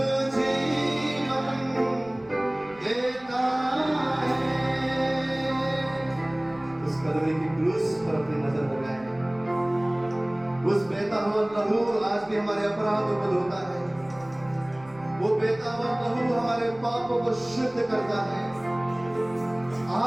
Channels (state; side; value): noise; right; rumble, 25 dB below the sound